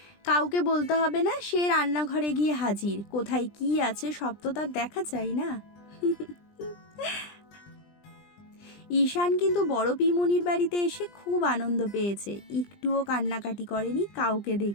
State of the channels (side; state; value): right; late; 20 ms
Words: কাউকে বলতে হবে না, সে রান্নাঘরে গিয়ে হাজির। কোথায় কি আছে সব তো তার দেখা চাই না। ঈশান কিন্তু বড় পিমনির বাড়িতে এসে খুব আনন্দ পেয়েছে, একটুও কান্নাকাটি করেনি কাউকে